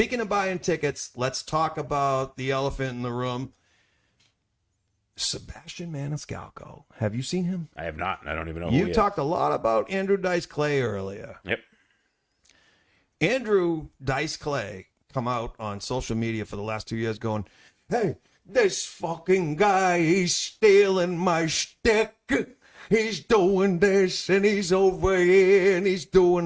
of buying tickets, let's talk about the elephant in the room. Sebastian Maniscalco. Have you seen him? I have not. I don't even know. Who You he is. talked a lot about Andrew Dice Clay earlier. Yep. Andrew Dice Clay come out on social media for the last 2 years going, hey, this fucking guy, he's stealing my shtick. He's doing this and he's over here and he's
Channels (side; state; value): both; identical; correlation 1.00